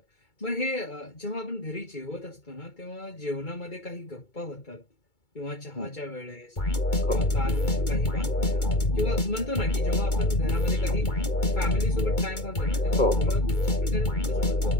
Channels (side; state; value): right; late; 2.2 ms